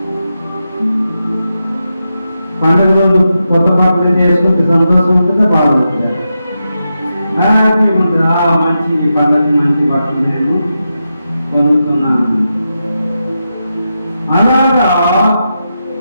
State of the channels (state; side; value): inverted; both; correlation -0.88